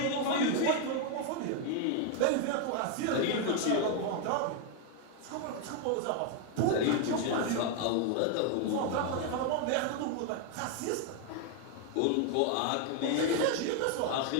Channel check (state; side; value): different; both; correlation 0.01